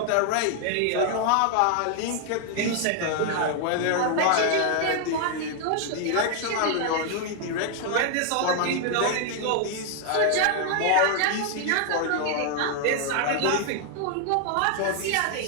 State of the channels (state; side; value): different; both; correlation 0.00